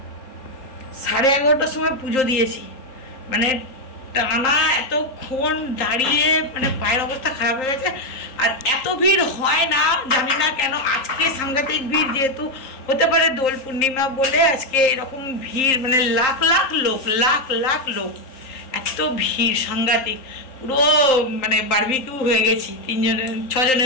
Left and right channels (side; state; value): right; late; 3.8 ms